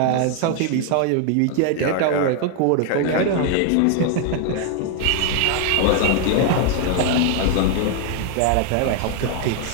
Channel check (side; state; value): both; different; correlation 0.00